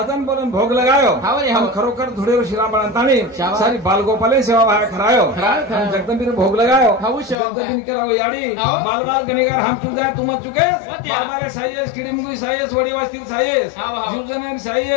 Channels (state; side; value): drops out; right; at 7.4 s